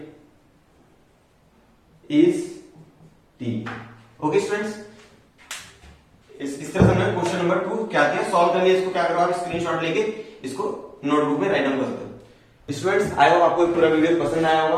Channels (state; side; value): identical; both; correlation 1.00